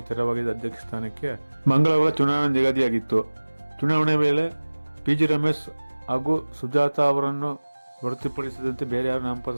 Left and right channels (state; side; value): inverted; both; correlation -1.00